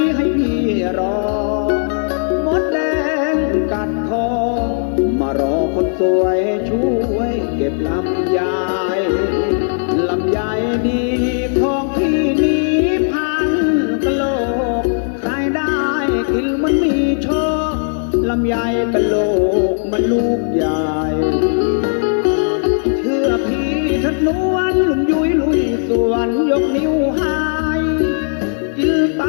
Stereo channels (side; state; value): right; silent; digital silence